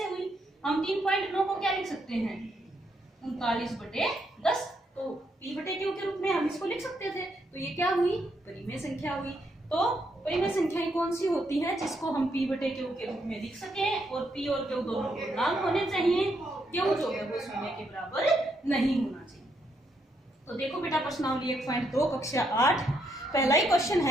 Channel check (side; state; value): both; normal; correlation 0.77